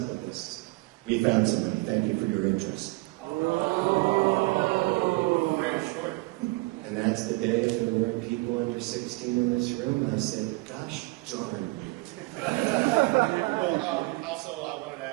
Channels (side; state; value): left; quieter; 24.5 dB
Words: with this? We found somebody. Thank you for your interest. Oh, very short. And that's the day if there weren't people under 16 in this room. I said, gosh darn you. Well, also I wanted to